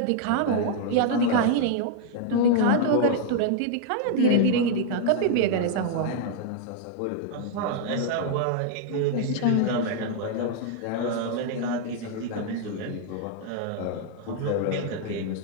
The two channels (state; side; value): different; both; correlation 0.00